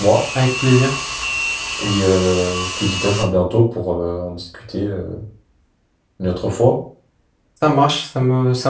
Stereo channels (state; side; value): identical; both; correlation 1.00